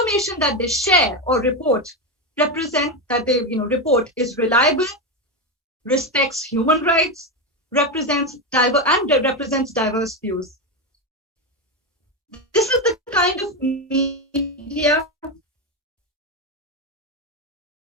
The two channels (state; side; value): normal; both; correlation 0.12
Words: that they share or report report is reliable, respects human rights, represents diverse views. This is the kind of media